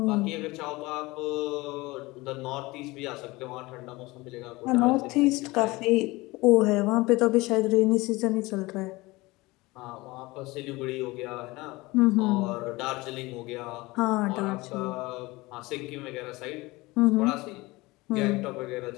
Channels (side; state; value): right; quieter; 21.7 dB